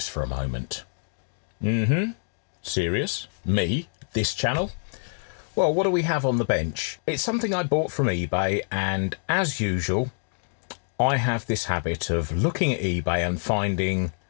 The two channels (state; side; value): silent; right; digital silence